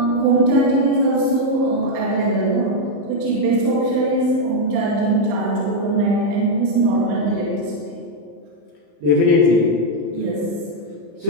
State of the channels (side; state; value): left; late; 34 ms